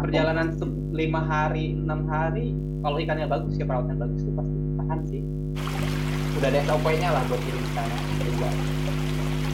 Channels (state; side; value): identical; both; correlation 1.00